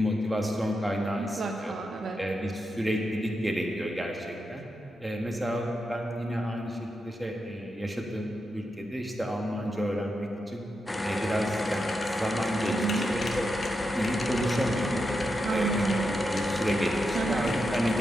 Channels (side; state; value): both; normal; correlation 0.86